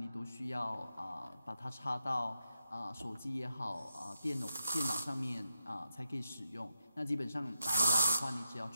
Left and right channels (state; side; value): inverted; both; correlation -0.85